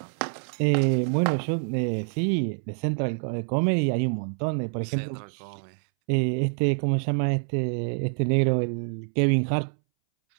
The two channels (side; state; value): left; silent; 61 dB below the other